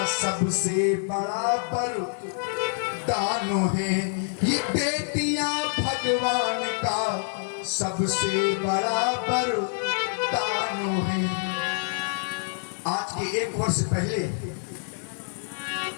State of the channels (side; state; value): right; silent; digital silence